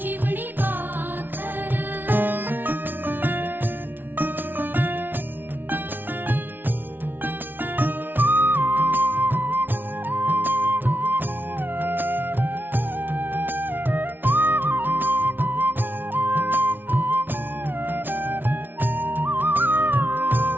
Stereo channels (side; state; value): left; late; 0.093 ms